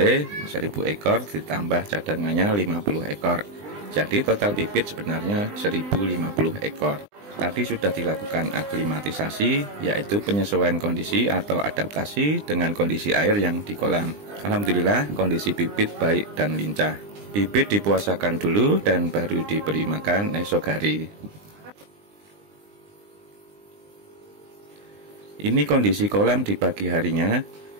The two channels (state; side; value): late; left; 20 ms